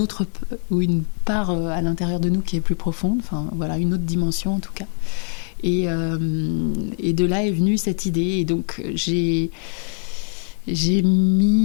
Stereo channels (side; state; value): right; silent; 64 dB below the other